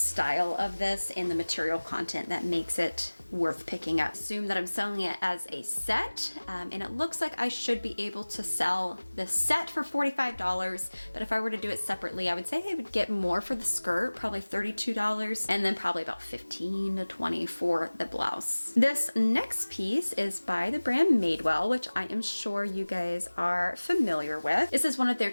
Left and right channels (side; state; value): both; inverted; correlation -1.00